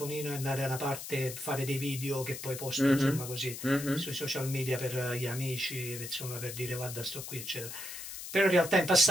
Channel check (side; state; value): left; noise; hiss, 9 dB below the sound